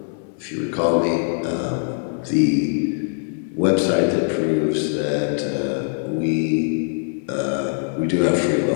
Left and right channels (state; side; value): silent; right; 64 dB below the other